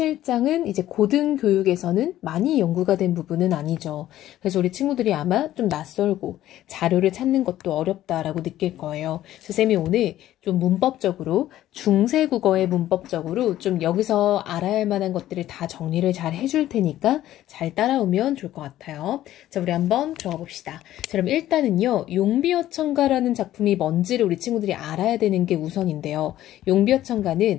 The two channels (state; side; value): quieter; right; 13.5 dB